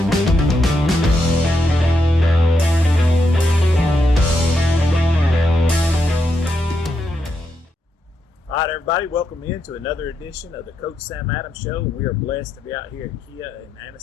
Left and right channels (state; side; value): normal; both; correlation 0.82